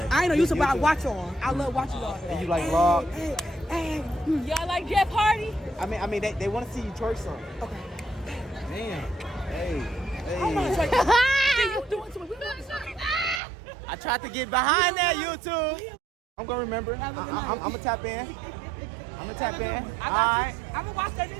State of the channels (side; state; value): left; drops out; at 13.4 s